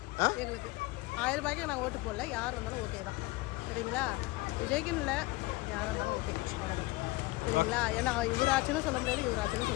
எங்களுக்கு 1000 ரூபாய்க்கு நான் ஓட்டு போடல, யார் வந்தாலும் ஓகே தான். சரிங்களா? விஜய்க்குன்னு இல்லை, யார் வந்தாலும் ஓகே, அவ்வளோதான். சரிங்களா? ஏன்னா இவர் ஆச்சுன்னு சொல்ல முடியாது, இவர் ஆச்சுன்னு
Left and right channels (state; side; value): quieter; right; 21.1 dB